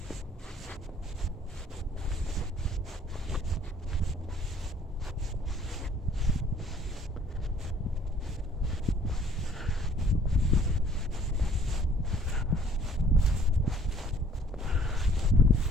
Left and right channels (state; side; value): normal; both; correlation 0.57